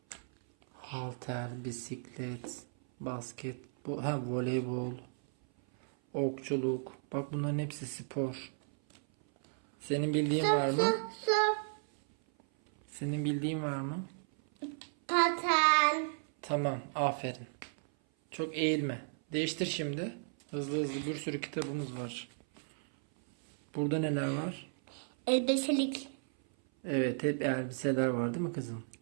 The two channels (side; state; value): left; silent; 55 dB below the other